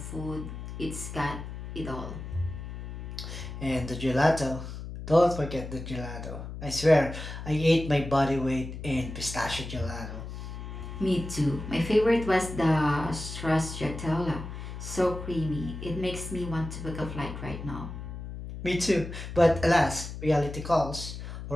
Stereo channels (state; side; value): noise; left; hum, 9 dB below the sound